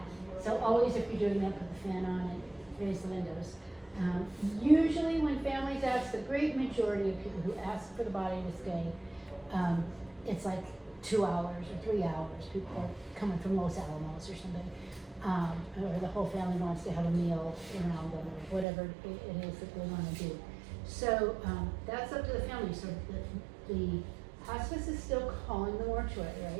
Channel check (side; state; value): left; drops out; at 18.7 s